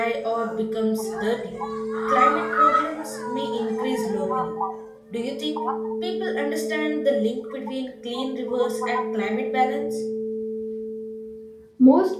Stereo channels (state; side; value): identical; both; correlation 1.00